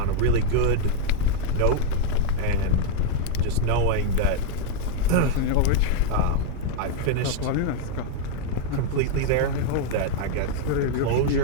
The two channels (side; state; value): both; different; correlation 0.00